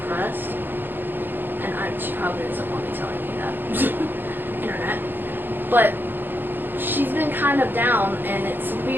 and she probably doesn't want me telling you that. Internet. But she's been kind of down, and it's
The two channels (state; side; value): late; left; 0.095 ms